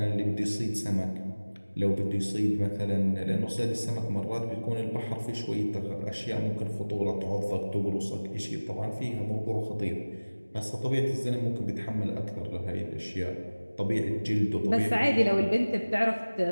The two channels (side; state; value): both; inverted; correlation -1.00